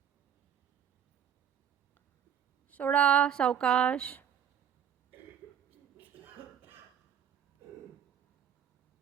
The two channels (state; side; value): quieter; left; 8.8 dB